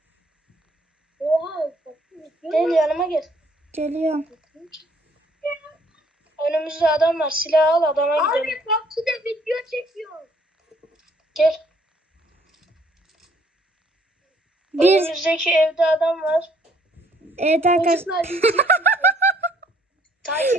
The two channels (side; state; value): both; normal; correlation 0.63